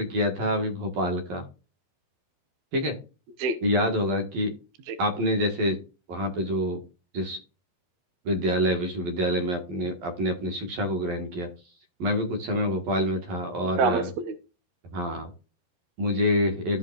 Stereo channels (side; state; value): left; late; 11 ms